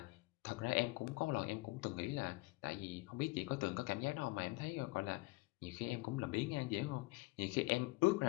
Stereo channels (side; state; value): right; quieter; 23.0 dB